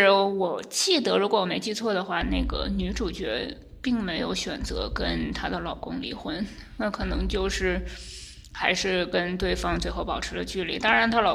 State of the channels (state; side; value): identical; both; correlation 1.00